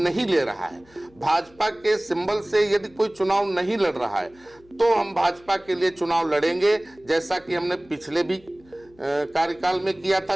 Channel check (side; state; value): left; noise; hum, 29 dB below the sound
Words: ले रहा है, भाजपा के सिंबल से यदि कोई चुनाव नहीं लड़ रहा है तो हम भाजपा के लिए चुनाव लड़ेंगे, जैसा कि हमने पिछले भी कार्यकाल में किया था